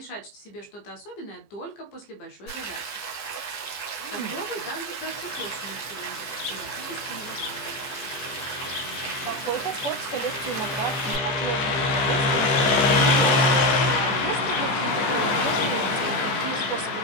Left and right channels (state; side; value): late; right; 15 ms